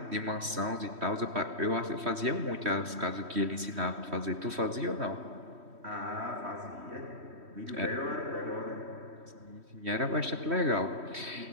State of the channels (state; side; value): late; left; 3.1 ms